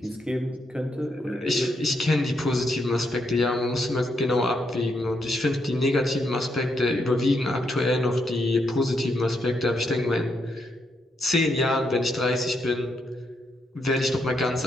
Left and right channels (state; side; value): normal; both; correlation 0.79